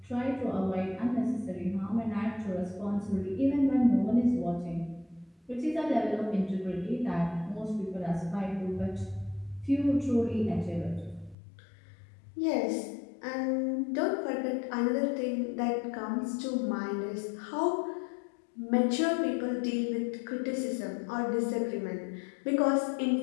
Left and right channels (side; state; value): right; drops out; at 11.4 s